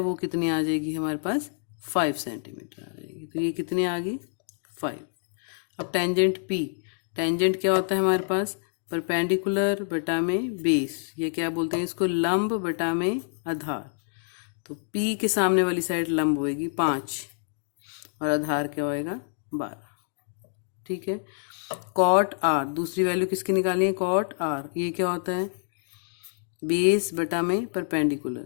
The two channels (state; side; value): silent; right; digital silence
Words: कितनी आ जाएगी हमारे पास 5 सेंटीमीटर आ जाएगी। तो ये कितनी आ गई 5। अब टेंजेंट पी। टेंजेंट क्या होता है हमारे पास परपेंडिकुलर बटा में बेस, ये क्या बोलते हैं इसको लंब बटा में आधार। तो पी के सामने वाली साइड लंब होएगी 5 और आधार क्या होएगा 12। ठीक है, कॉट आर, दूसरी वैल्यू किसकी निकाली है कॉट आर। ये क्या होता है बेस बटा में